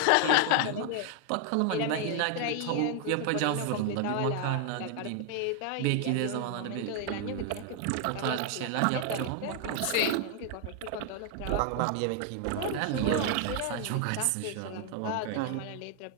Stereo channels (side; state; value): both; different; correlation 0.00